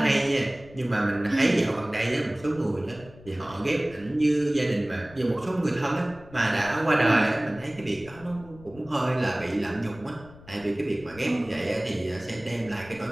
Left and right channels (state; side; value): noise; left; rumble, 20 dB below the sound